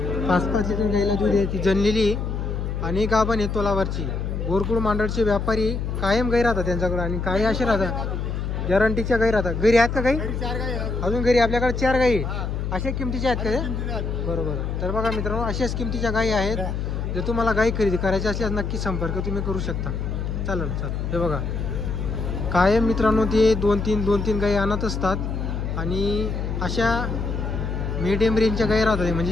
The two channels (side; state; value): left; noise; hum, 3 dB below the sound